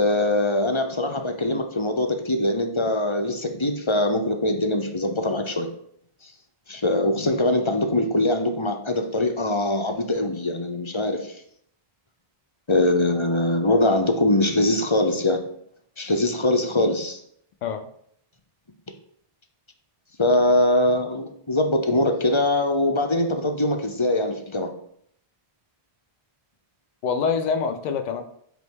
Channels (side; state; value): right; late; 1.3 ms